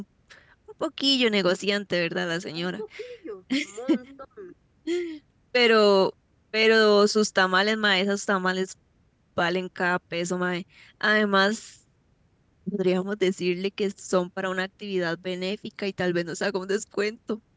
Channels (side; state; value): both; identical; correlation 1.00